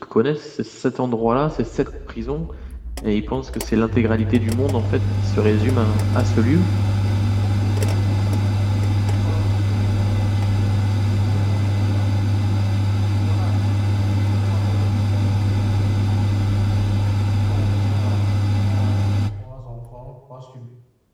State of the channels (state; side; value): identical; both; correlation 1.00